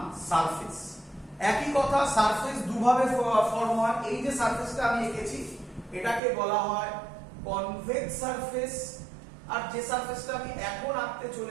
সারফেস। একই কথা, সারফেস দুভাবে ফর্ম হয়। এই যে সারফেসটা আমি এঁকেছি এটাকে বলা হয় কনভেক্স সারফেস, আর যে সারফেসটা আমি এখন আঁকতে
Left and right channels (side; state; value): left; drops out; at 6.2 s